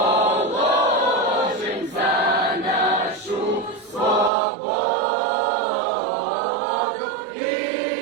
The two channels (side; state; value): left; drops out; at 4.3 s